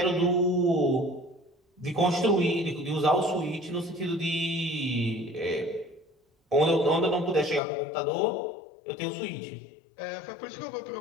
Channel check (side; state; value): right; drops out; at 7.6 s